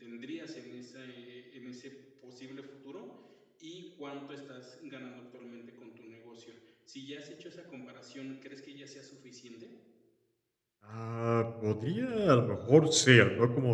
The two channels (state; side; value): identical; both; correlation 1.00